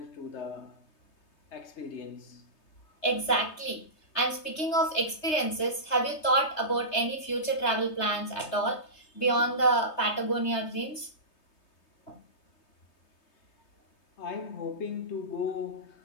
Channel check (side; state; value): right; late; 3.2 ms